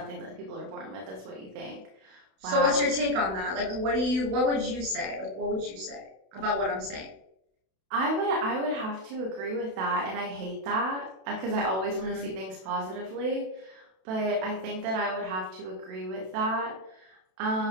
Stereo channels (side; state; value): left; late; 32 ms